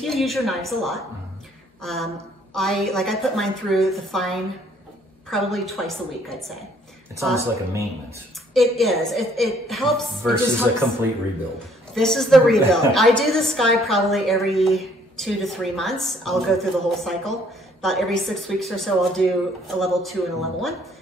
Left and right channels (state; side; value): normal; both; correlation 0.63